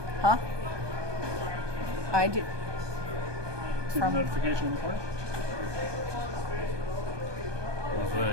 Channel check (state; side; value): late; left; 1.2 ms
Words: Huh? I do. See the From- notification in the corner? I was